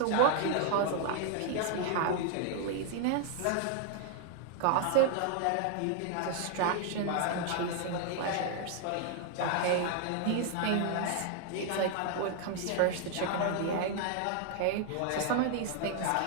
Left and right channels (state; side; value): different; both; correlation 0.00